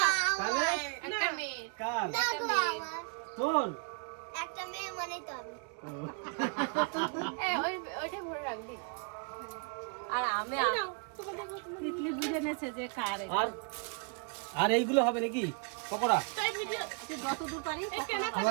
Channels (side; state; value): left; quieter; 37.3 dB